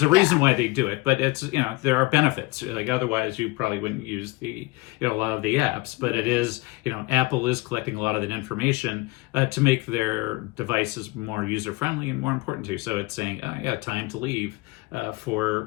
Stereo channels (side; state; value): right; quieter; 23.2 dB